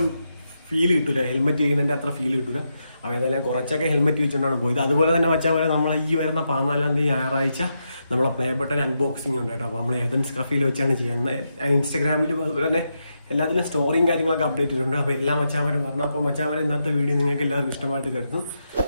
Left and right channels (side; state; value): both; inverted; correlation -0.84